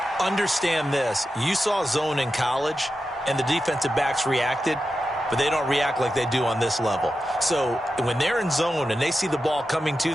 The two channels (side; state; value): both; normal; correlation 0.91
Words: understand this. You saw zone in college, and the defensive backs reacted, but they don't react like they do on this level. So when they're in zone and they see the ball coming